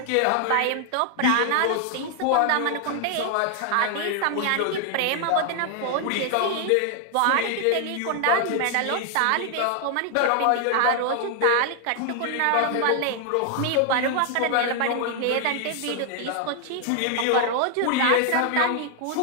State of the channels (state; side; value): different; both; correlation 0.00